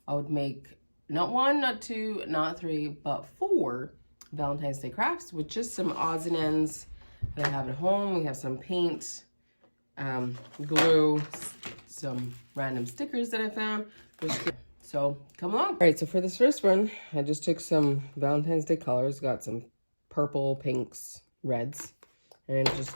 I would make not 1, not 2, not 3, but 4 Valentine's Day crafts with just some odds and ends that I have at home. We have some paint, glue, some random stickers that I found. So come along. All right, so for this first one, I just took some Valentine's Day colors, got some purple, pinks, reds. And just,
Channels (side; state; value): both; inverted; correlation -1.00